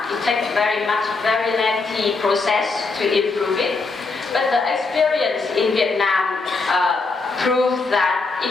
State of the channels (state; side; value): quieter; right; 3.9 dB